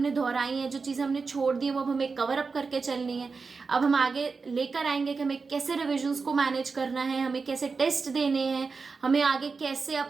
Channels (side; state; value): left; quieter; 4.6 dB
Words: दोहराई हैं, जो चीजें हमने छोड़ दी है वो अब हमें कवर अप करके चलनी है। अब हम आगे लेकर आएंगे कि हमें कैसे रिविजन्स को मैनेज करना है, हमें कैसे टेस्ट देने हैं, हमें आगे कैसे